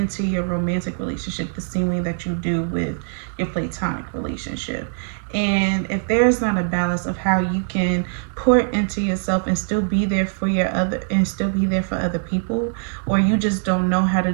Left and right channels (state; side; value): silent; left; digital silence